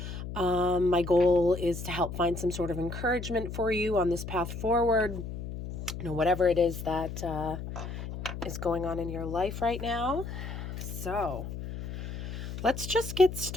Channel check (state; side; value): noise; left; hum, 7 dB below the sound